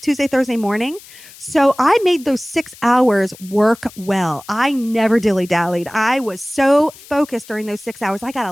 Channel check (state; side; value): noise; left; hiss, 20 dB below the sound